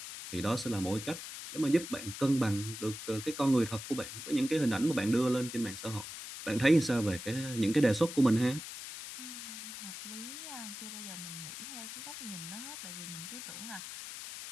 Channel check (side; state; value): left; noise; hiss, 9 dB below the sound